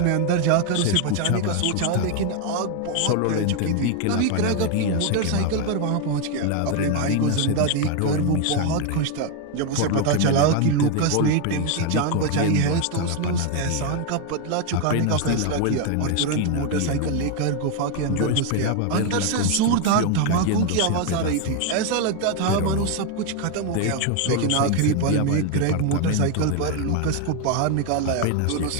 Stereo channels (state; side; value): different; both; correlation 0.01